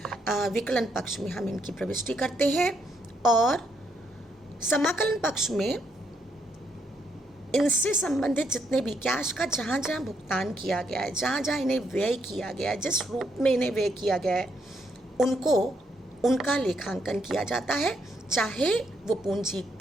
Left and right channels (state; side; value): normal; both; correlation 0.75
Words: विकलन पक्ष में हम इनकी प्रविष्टि करते हैं। और समाकलन पक्ष में इनसे संबंधित जितने भी कैश का जहाँ जहाँ भुगतान किया गया है, जहाँ जहाँ इन्हें व्यय किया गया है, जिस रूप में इन्हें व्यय किया गया है, उनका लेखांकन किया जाता है, चाहे वो